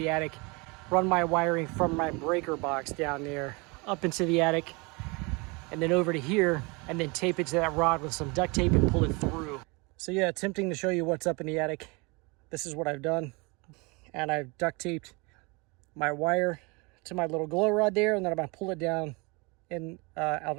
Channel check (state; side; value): quieter; left; 28.2 dB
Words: attic, run my wiring from my breaker box down there up into the attic and then over to here, and then tape it to that rod with some duct tape and pull it through. So yeah, attempting to show you what's up in the attic. This is what I've done. And I've duct taped my wire to my little glow rod there, and then I'm gonna pull it down and